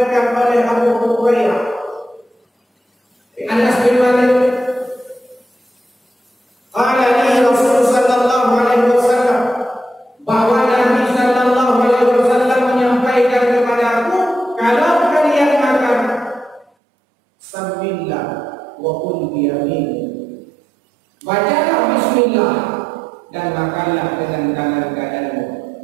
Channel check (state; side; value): drops out; left; at 16.7 s